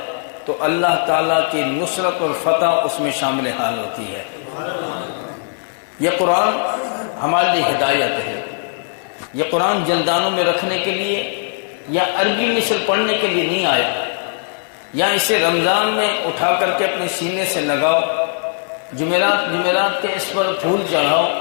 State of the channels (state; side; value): silent; right; digital silence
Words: تو اللہ تعالیٰ کی نصرت اور فتح اس میں شامل حال ہوتی ہے۔ یہ قرآن ہمارے لیے ہدایت ہے۔ یہ قرآن جلدانوں میں رکھنے کے لیے یا عربی مثل پڑھنے کے لیے نہیں آیا، یا اسے رمضان میں اٹھا کر کے اپنے سینے سے لگاؤ، جمعرات کے اس پر پھول چڑھاؤ،